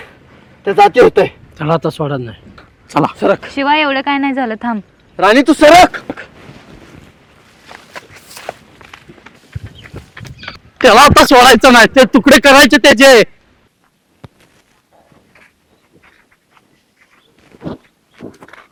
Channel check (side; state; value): both; identical; correlation 1.00